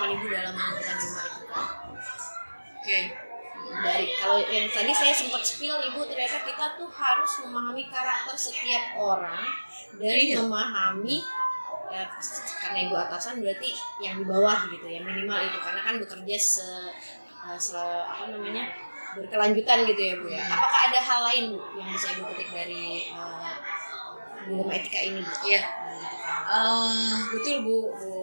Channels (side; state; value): both; inverted; correlation -1.00